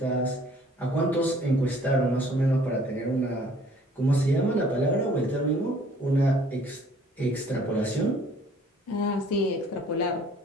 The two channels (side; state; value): both; normal; correlation 0.56